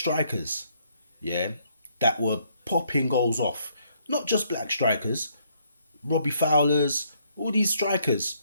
yeah, that were popping goals off. Not just black strikers, Robbie Fowlers, all these strikers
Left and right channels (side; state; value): both; inverted; correlation -0.69